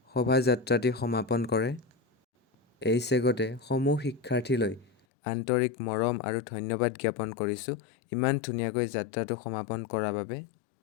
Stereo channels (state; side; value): drops out; right; at 4.9 s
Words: শোভাযাত্ৰাটি সমাপন কৰে। এই চেগতে সমূহ শিক্ষাৰ্থীলৈ আন্তৰিক মৰম আৰু ধন্যবাদ জ্ঞাপন কৰিছোঁ ইমান ধুনীয়াকৈ যাত্ৰাটো সমাপন কৰাৰ বাবে।